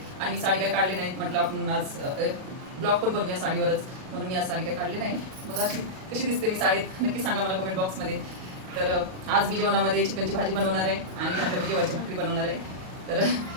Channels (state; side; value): late; left; 38 ms